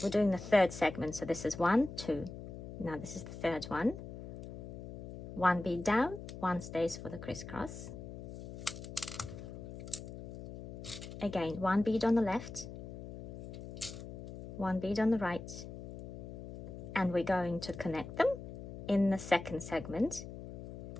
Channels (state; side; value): noise; left; hum, 11 dB below the sound